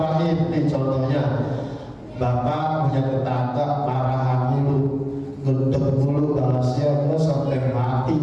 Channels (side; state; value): both; identical; correlation 1.00